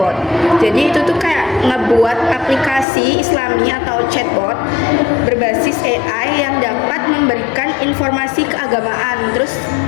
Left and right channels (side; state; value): right; drops out; at 2.9 s